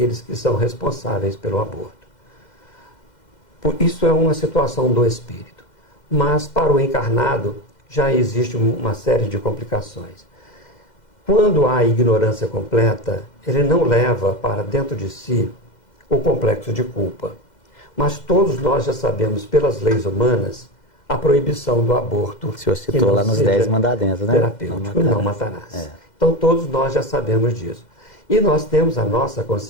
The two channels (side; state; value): right; late; 2.0 ms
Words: que são responsáveis pelo aborto. Isso é uma situação do espírito. Mas para o encarnado já existe uma série de complicações. Quando há ignorância completa, ele não leva para dentro de si o complexo de culpa. Mas todos nós já sabemos, pelas leis humanas, a proibição do aborto. O senhor citou lá nos 10 mandamentos, né? Terapêutico, não matarás. Então todos nós já sabemos disso. E nós temos a nossa